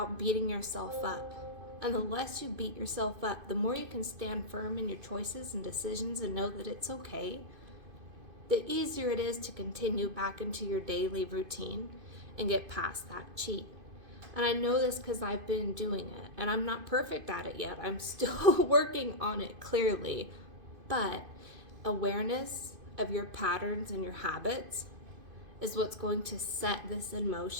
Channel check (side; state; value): left; late; 2.5 ms